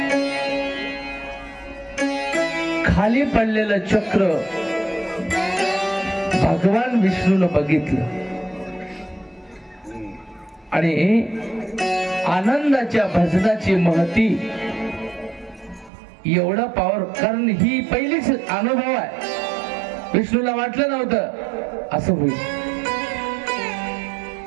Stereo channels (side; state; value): left; drops out; at 15.9 s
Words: खाली पडलेलं चक्र भगवान विष्णूनं बघितलं आणि आनंदाच्या भजनाची महती एवढा पॉवर, कारण ही पहिलीच अनुभव आहे. विष्णूला वाटलं नव्हतं असं होईल.